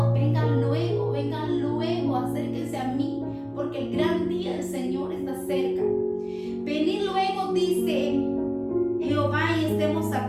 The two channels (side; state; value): both; identical; correlation 1.00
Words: vengan luego, acérquense a mí, porque el gran día del Señor está cerca. Venid luego, dice Jehová, y estemos